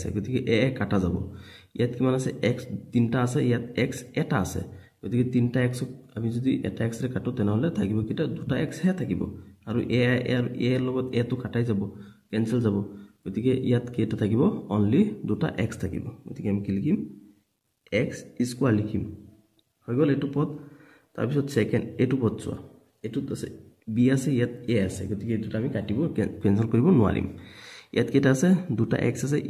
গতিকে a কাটা যাব ইয়াত কিমান আছে x তিনটা আছে ইয়াত x এটা আছে গতিকে তিনটা x আমি যদি এটা x ৰে কাটো তেনেহলে থাকিব কিটা দুটা x হে থাকিব আৰু a আৰু a লগত a তো কাটাই যাব কেনসেল যাব গতিকে ইয়াত কেটা থাকিব অনলি দুটা x থাকিব গতিকে আমি কি লিখিম x² লিখিম হৈ গল এটো পদ তাৰ পিছত সেকেন্ড এটো পদ চোৱা এটোত আছে b আছে ইয়াত a আছে গতিকে এটোটা আমি কাটিব কেনসেল কৰিব নোৱাৰিম ইয়াত কেটা আছে দুটা x আছে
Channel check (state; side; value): identical; both; correlation 1.00